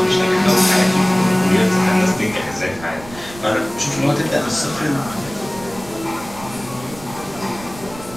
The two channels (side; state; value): right; noise; rumble, 17 dB below the sound